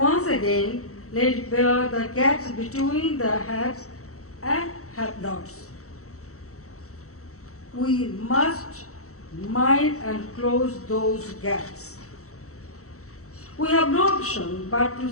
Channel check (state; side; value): late; right; 0.64 ms